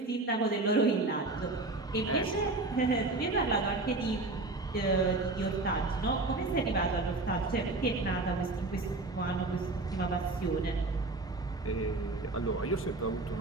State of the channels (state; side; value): quieter; left; 3.1 dB